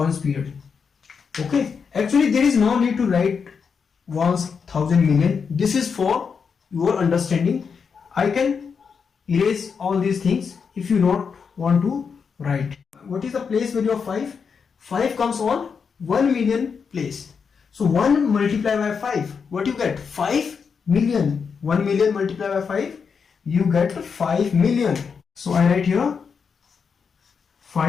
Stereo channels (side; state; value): right; quieter; 6.0 dB